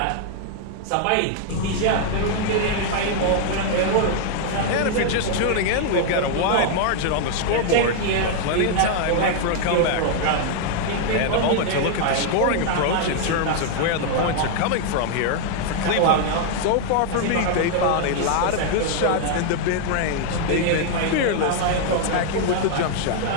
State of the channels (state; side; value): different; both; correlation 0.00